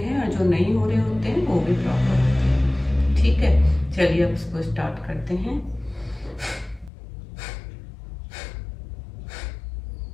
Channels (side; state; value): right; drops out; at 6.9 s